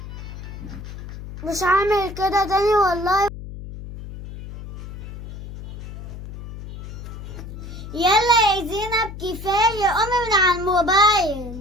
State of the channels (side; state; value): left; noise; hum, 11 dB below the sound